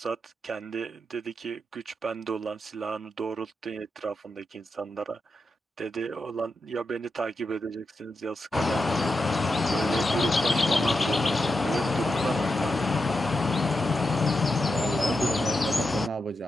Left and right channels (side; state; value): both; normal; correlation 0.87